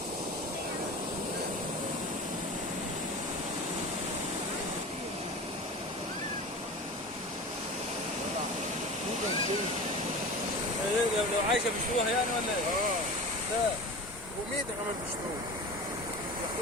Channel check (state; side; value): normal; both; correlation 0.33